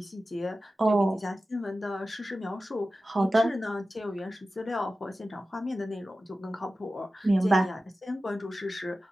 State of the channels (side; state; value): both; normal; correlation 0.94